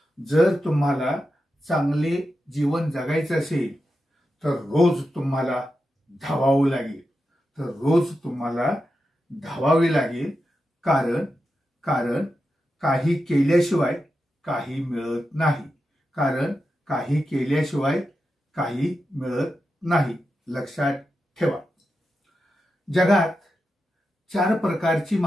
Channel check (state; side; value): normal; both; correlation 0.89